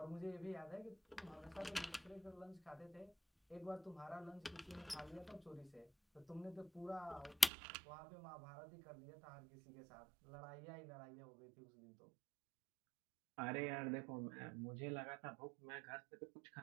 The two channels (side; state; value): left; drops out; at 7.5 s